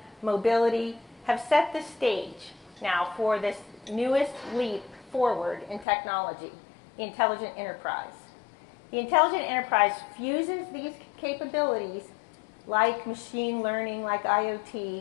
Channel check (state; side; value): drops out; right; at 5.9 s